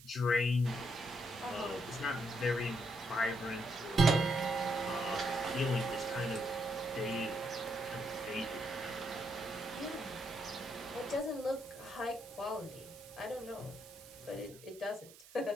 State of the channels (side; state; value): right; noise; hiss, 20 dB below the sound